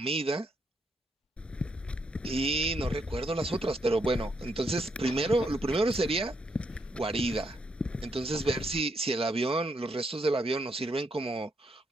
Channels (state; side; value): normal; both; correlation 0.77